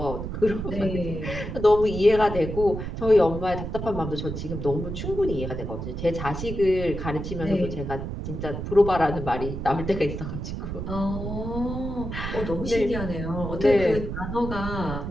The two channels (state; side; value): noise; right; rumble, 5 dB below the sound